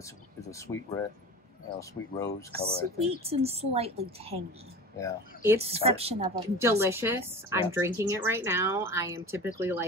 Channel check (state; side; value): normal; both; correlation 0.34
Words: it's a sweet red, sweet rose color. I think. Sweet and slightly tangy. Yeah. It's Description of a delicious. Yeah. I'm drinking it right now. I am typically